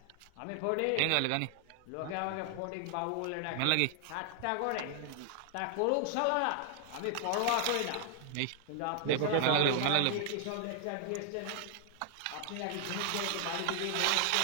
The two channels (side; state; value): both; different; correlation 0.00